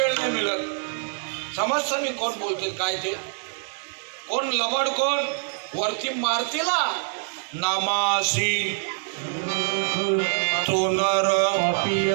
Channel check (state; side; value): silent; left; 62 dB below the other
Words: नाही मिळत. समजतं मी कोण बोलते काय ते, कोण लबाड कोण. वरती मारतीला नामासी तो नर